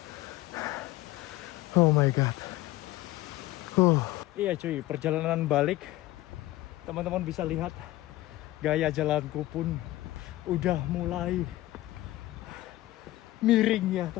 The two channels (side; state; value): right; quieter; 16.9 dB